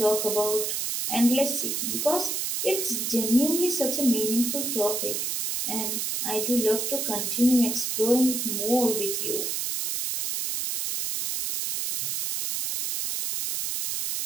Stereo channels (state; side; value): noise; right; hiss, 1 dB below the sound